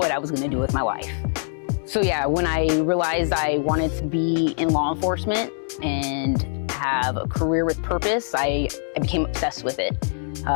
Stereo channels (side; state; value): right; silent; digital silence